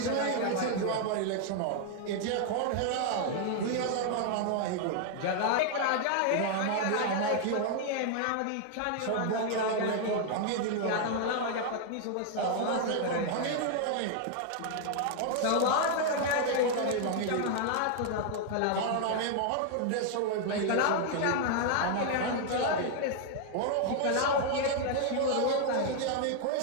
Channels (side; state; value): both; different; correlation 0.00